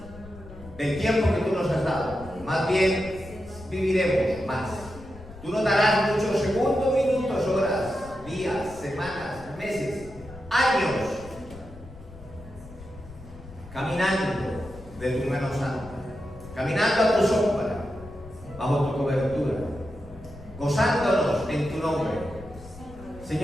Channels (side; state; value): left; noise; rumble, 17 dB below the sound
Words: del tiempo que tú nos has dado. Más bien, viviremos más. Tú nos darás muchos segundos, minutos, horas, días, semanas, meses, años, caminando de tu mano santa, caminando a tu sombra, bajo tu cobertura, gozándonos en tu nombre.